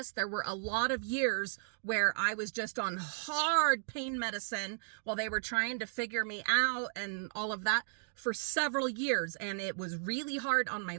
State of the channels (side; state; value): left; silent; digital silence